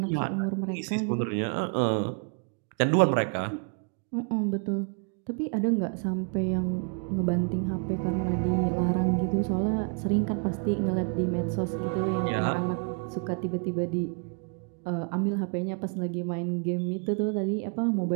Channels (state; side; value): quieter; left; 39.9 dB